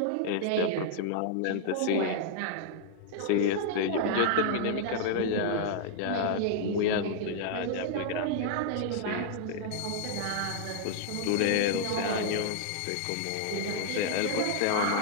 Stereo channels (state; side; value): different; both; correlation -0.01